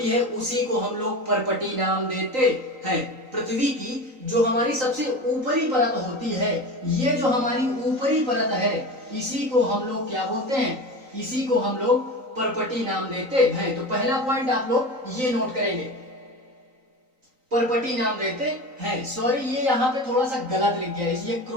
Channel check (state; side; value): late; left; 3.9 ms